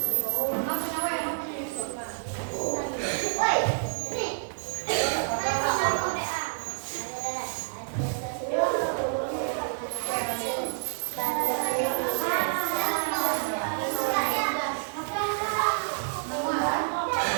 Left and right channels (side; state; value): left; silent; digital silence